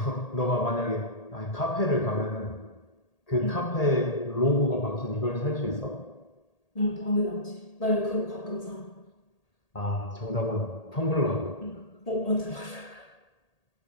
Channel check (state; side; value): late; right; 1.8 ms